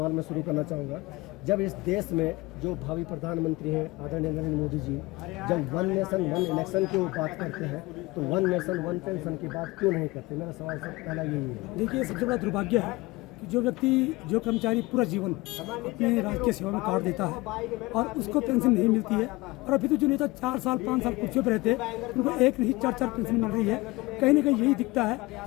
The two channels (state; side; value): quieter; right; 22.2 dB